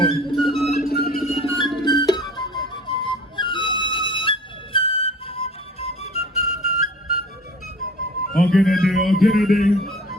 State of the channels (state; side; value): normal; both; correlation 0.46